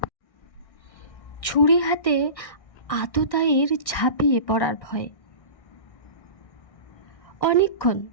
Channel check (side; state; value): right; late; 1.6 ms